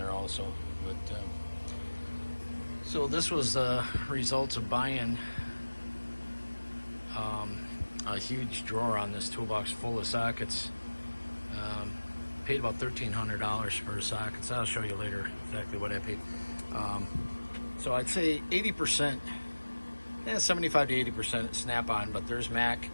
also. But so this was the results of buying a huge drawer on this toolbox full of sockets. Paid about $1,300 for sockets. I'll show you later exactly what I paid. So I'd say 80%. 75 to 80% Snap-on, but there's Mac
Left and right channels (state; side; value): inverted; both; correlation -1.00